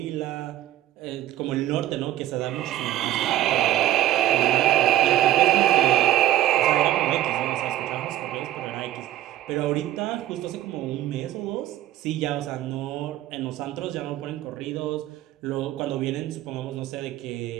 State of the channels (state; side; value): quieter; left; 13.7 dB